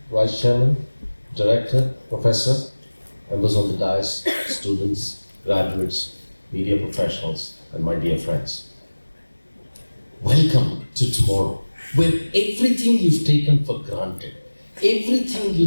Vice Chairman, Director, Professor, members of the dais, students, graduates, media professionals, and my dear friends. Welcome to tomorrow, where everything you've taken for granted, everything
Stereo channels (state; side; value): inverted; both; correlation -1.00